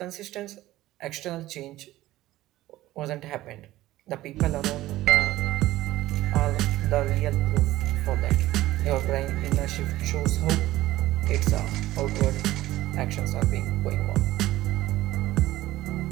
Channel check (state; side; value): quieter; left; 16.0 dB